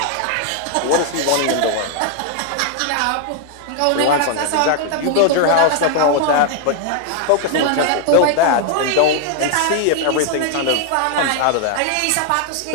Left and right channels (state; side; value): different; both; correlation 0.00